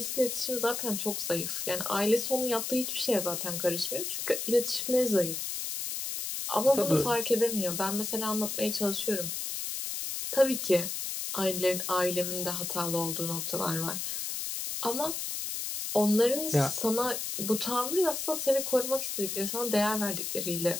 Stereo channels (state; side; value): noise; left; hiss, 4 dB below the sound